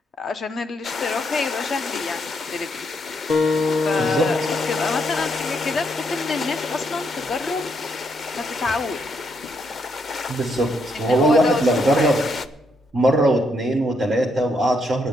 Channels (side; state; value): both; normal; correlation 0.76